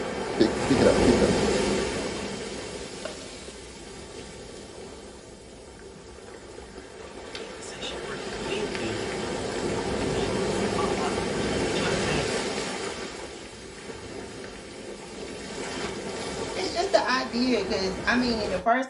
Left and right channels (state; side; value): identical; both; correlation 1.00